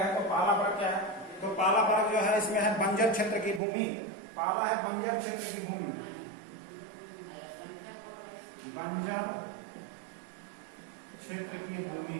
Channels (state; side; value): drops out; left; at 3.6 s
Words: है। तो पहला वर्ग क्या है? तो पहला वर्ग जो है इसमें है बंजर क्षेत्र की भूमि। पहला है बंजर क्षेत्र की भूमि। बंजर क्षेत्र की भूमि।